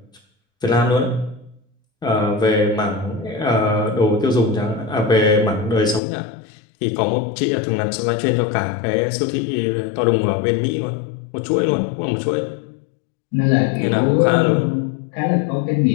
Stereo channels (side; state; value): right; drops out; at 6.0 s